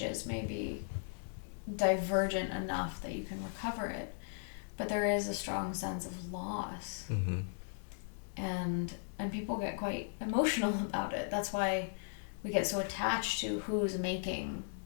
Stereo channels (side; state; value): right; silent; digital silence